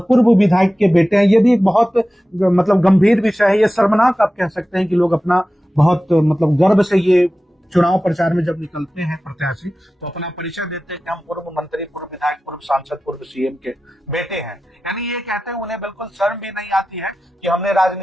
पूर्व विधायक के बेटे हैं। ये भी एक बहुत मतलब गंभीर विषय है। ये शर्मनाक आप कह सकते हैं कि लोग अपना बहुत मतलब गर्व से ये चुनाव प्रचार में जब निकलते हैं प्रत्याशी तो अपना परिचय देते हैं कि हम पूर्व मंत्री, पूर्व विधायक, पूर्व सांसद, पूर्व सीएम के बेटे हैं। यानी ये कहते हैं उन्हें बिल्कुल शर्म भी नहीं आती है कि हमने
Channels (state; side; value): normal; both; correlation 0.95